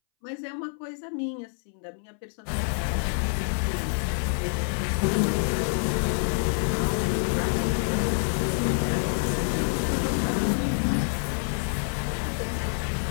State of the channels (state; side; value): silent; right; 60 dB below the other